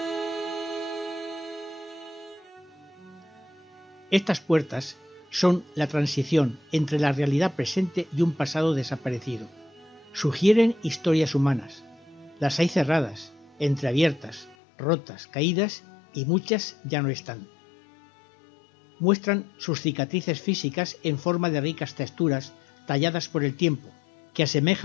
Estas puertas son la transición entre la realidad presente y un pasado desaparecido. Sugieren historias humanas. Las hay cerradas, entreabiertas, rotas, caídas y muchas ya no están. Muestran sus cicatrices físicas en forma de ricas texturas talladas por el tiempo, que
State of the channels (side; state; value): right; drops out; at 14.6 s